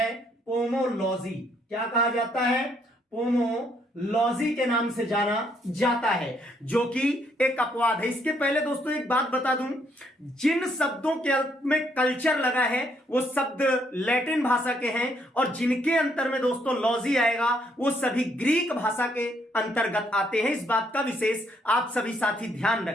पोमोलॉजी। क्या कहा जाता है? पोमोलॉजी के नाम से जाना जाता है, जो कि एक अपवाद है। इसके पहले दोस्तों एक बात बता दूं, जिन शब्दों के अंत में कल्चर लगा है वो शब्द लैटिन भाषा के हैं, और जिनके अंतर में दोस्तों लॉजी आएगा वो सभी ग्रीक भाषा के अंतर्गत आते हैं। इस बात का विशेष आप सभी साथी ध्यान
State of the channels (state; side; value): normal; both; correlation 0.71